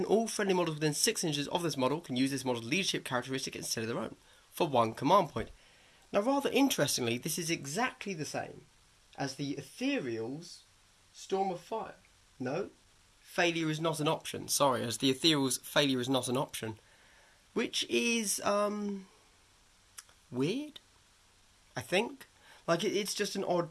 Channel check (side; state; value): both; identical; correlation 1.00